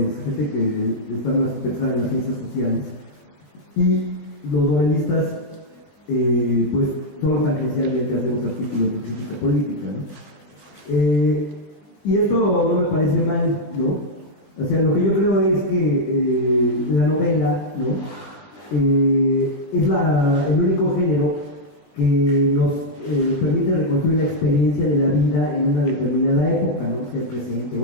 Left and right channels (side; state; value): right; late; 20 ms